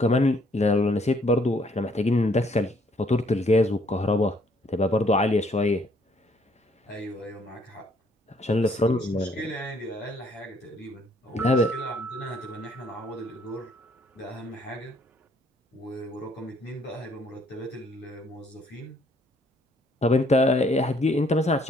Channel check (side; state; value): both; normal; correlation 0.65